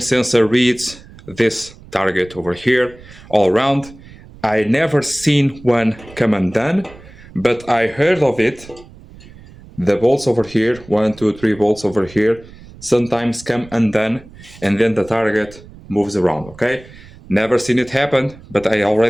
sensor reads this target over here all around. I never seen one come undone, but I heard of it. The bolts over here, 1, 2, 3 bolts over here, sometimes come undone, and then the target moves around, okay? Never seen it happen, but I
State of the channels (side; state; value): right; noise; rumble, 21 dB below the sound